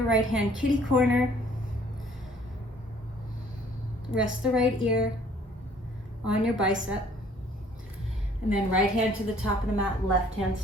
right hand kitty corner. Rest the right ear on your bicep. And then right hand to the top of the mat, left hand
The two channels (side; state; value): both; normal; correlation 0.58